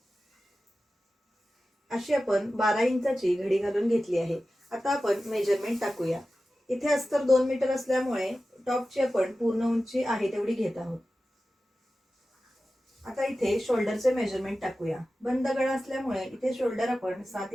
अशी आपण 12 इंचाची घडी घालून घेतली आहे। आता आपण मेजरमेंट टाकूया। इथे अस्तर 2 मीटर असल्यामुळे टॉपची आपण पूर्ण उंची आहे तेवढी घेत आहोत। आता इथे शोल्डरचे मेजरमेंट टाकूया। बंद गळा असल्यामुळे इथे शोल्डर आपण 7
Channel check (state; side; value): normal; both; correlation 0.94